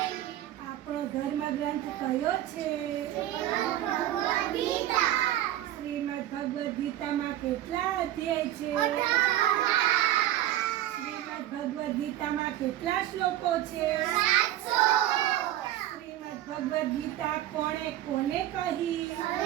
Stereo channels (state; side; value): quieter; left; 13.3 dB